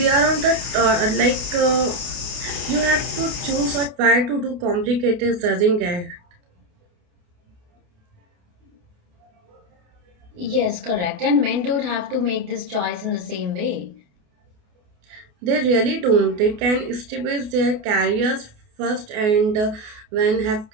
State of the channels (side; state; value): left; late; 28 ms